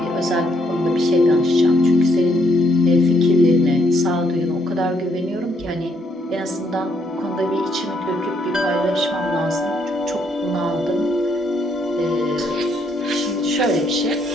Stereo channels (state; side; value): normal; both; correlation 0.72